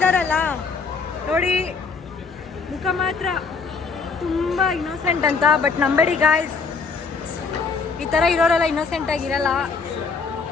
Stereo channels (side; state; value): right; quieter; 4.9 dB